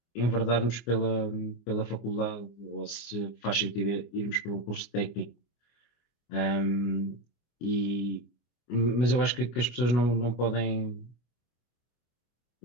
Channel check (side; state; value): right; late; 25 ms